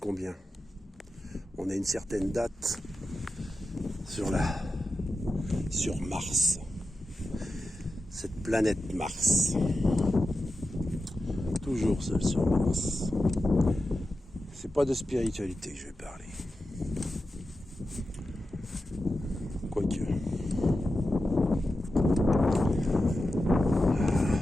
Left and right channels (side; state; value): both; normal; correlation 0.91